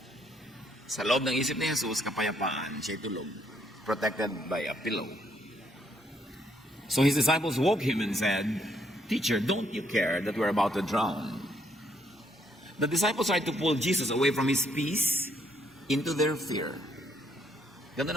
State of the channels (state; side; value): normal; both; correlation 0.71